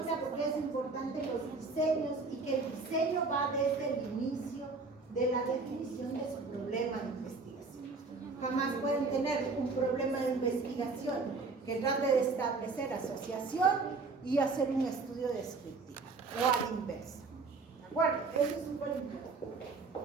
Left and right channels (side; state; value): left; quieter; 4.1 dB